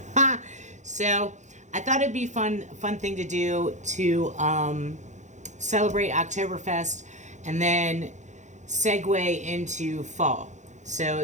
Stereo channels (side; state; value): left; late; 0.35 ms